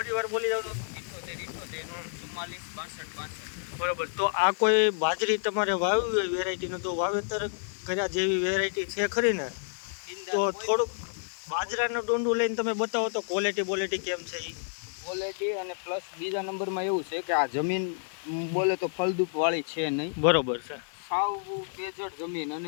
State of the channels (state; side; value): silent; right; digital silence